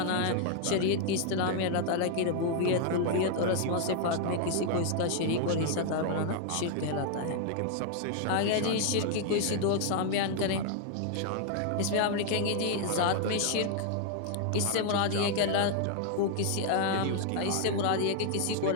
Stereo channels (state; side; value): different; both; correlation 0.00